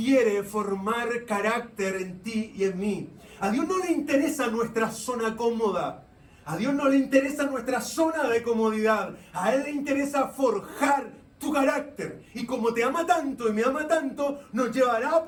formar carácter en ti y en mí. A Dios no le interesa nuestra zona cómoda. A Dios no le interesa nuestra zona de comodidad. A Él le interesa forjar tu carácter. Y como te ama tanto y me ama tanto, nos llevará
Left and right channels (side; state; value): both; identical; correlation 1.00